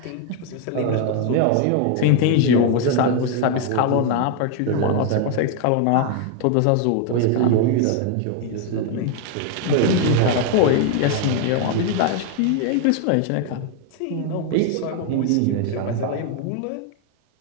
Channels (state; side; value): different; both; correlation 0.00